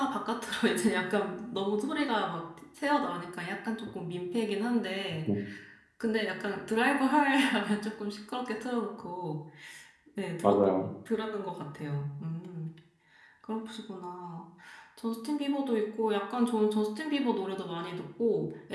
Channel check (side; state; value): both; identical; correlation 1.00